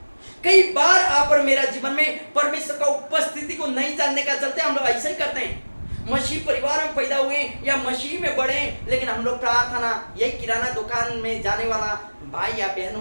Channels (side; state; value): both; inverted; correlation -1.00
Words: कई बार आप और मेरा जीवन में परमेश्वर का उपस्थिति को नहीं जानने का चलते हम लोग ऐसे ही करते हैं। मसीह परिवार में पैदा हुए या मसीह में बढ़े, लेकिन हम लोग प्रार्थना यही किराना दुकान में जाने वाला भाई या बहनों